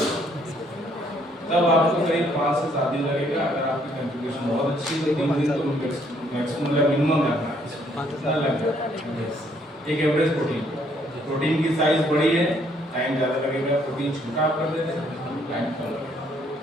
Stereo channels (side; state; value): both; normal; correlation 0.67